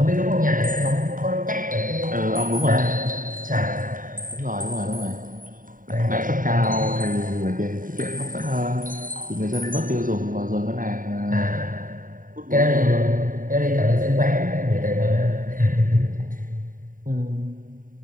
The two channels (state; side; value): late; left; 0.39 ms